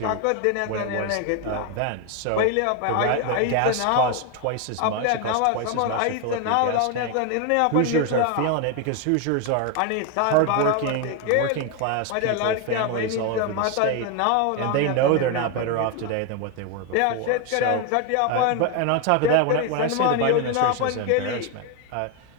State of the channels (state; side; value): different; both; correlation 0.01